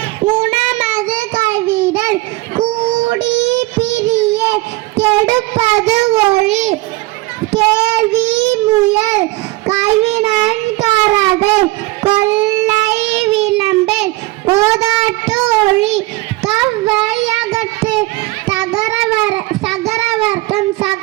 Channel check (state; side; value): quieter; left; 20.8 dB